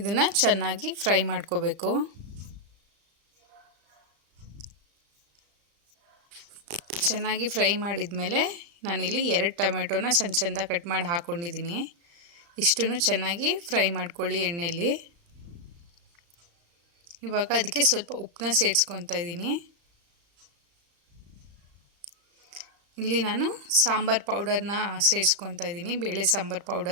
ಚೆನ್ನಾಗಿ ಫ್ರೈ ಮಾಡ್ಕೋಬೇಕು. ಚೆನ್ನಾಗಿ ಫ್ರೈ ಮಾಡಿದ ಮೇಲೆ ನಾನಿಲ್ಲಿ 2 ಟೊಮೆಟೊನ ಸಣ್ಣ ಸಣ್ಣದಾಗಿ ಕಟ್ ಮಾಡಿ ಹಾಕ್ಕೊಂಡಿದ್ದೀನಿ. ಇಷ್ಟನ್ನು ಚೆನ್ನಾಗಿ ಫ್ರೈ ಮಾಡ್ಕೊಳ್ಳಿ ಎಣ್ಣೆಯಲ್ಲಿ. ಇವಾಗ ಅದಕ್ಕೆ ಸ್ವಲ್ಪ ಉಪ್ಪನ್ನ ಸೇರಿಸ್ಕೊತಾ ಇದ್ದೀನಿ. ಇಲ್ಲಿ ನಾನು ಸಾಂಬಾರು ಪೌಡರ್ನ ಸೇರಿಸ್ಕೊತಾ ಇದ್ದೀನಿ. ಬೇಳೆ ಸಾಂಬಾರು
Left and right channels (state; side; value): late; left; 35 ms